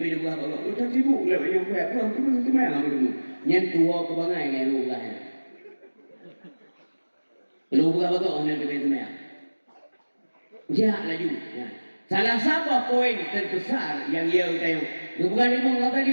dia buat apa? Udah sibuk lah yang buat apa? Tu tu mana ham tu? Yang tua ke bangai yang lu lah. Lu buat apa? Orang tu mana? Jah laju. Salah satu poin terbesar yang ia utayung. Bukan lima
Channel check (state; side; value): inverted; both; correlation -1.00